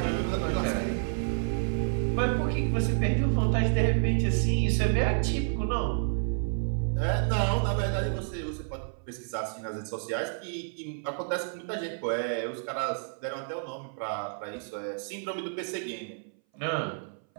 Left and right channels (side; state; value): left; silent; 58 dB below the other